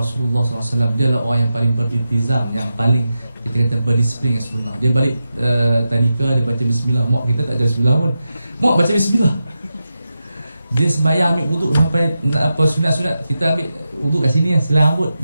SAW, dia adalah orang yang paling beriltizam, yang paling kita kata berdisiplin yang sebenar. Dia balik tadika, dia baca bismillah. Mak kita tak baca bismillah pun. Mak baca bismillah. Dia sembahyang ambil wuduk sampai apa sunat-sunat, kita ambil wuduk kat sini, silang rambut,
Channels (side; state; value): both; inverted; correlation -0.90